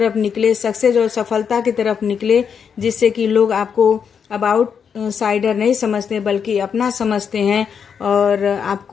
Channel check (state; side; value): quieter; right; 7.0 dB